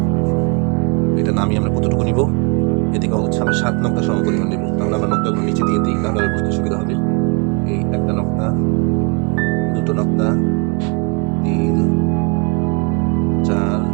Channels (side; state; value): left; quieter; 33.6 dB